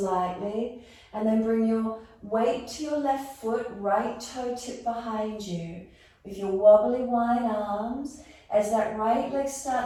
and then bring your weight to your left foot, right toe tip behind you. With your wobbly wide arms, as that right leg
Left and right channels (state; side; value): identical; both; correlation 1.00